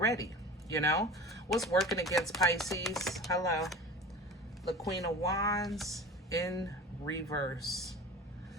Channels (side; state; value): both; normal; correlation 0.36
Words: What's working against Pisces? Hello. The Queen of Wands in reverse.